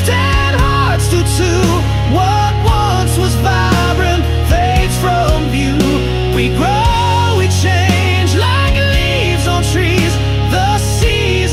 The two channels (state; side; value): identical; both; correlation 1.00